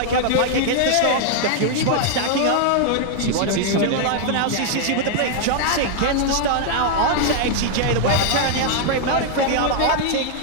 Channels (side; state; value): both; different; correlation 0.00